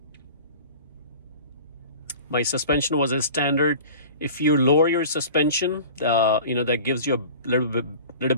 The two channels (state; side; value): inverted; both; correlation -0.40